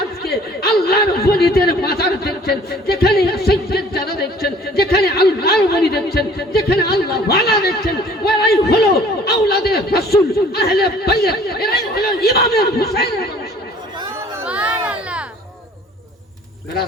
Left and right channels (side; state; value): both; normal; correlation 0.52